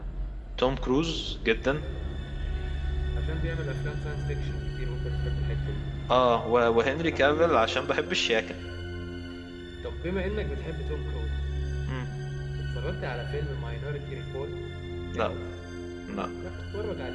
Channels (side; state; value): both; identical; correlation 1.00